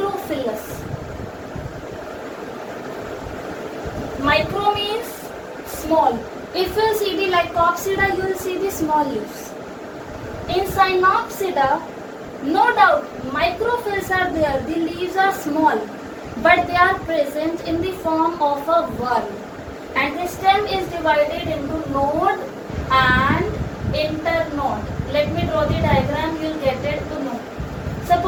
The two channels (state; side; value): identical; both; correlation 1.00